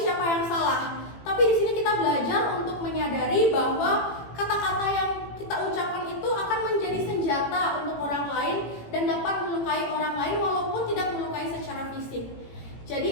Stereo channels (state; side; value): late; right; 18 ms